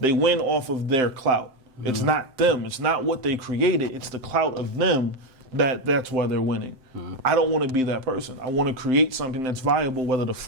win off of their clout. It's not them. It's not what they created. It's the clout of them that's why they're winning. I don't want to be that person. I want to create something that's viable whether the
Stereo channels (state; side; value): late; left; 7.7 ms